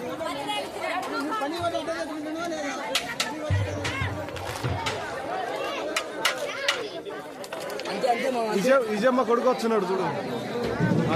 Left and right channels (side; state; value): both; identical; correlation 1.00